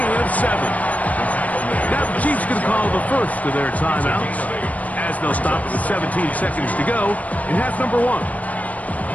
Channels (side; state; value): right; late; 0.071 ms